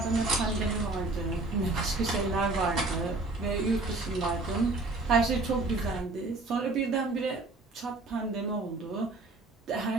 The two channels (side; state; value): left; quieter; 3.2 dB